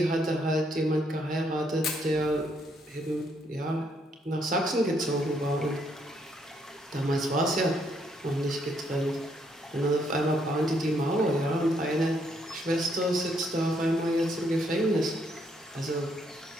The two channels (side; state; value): both; normal; correlation 0.72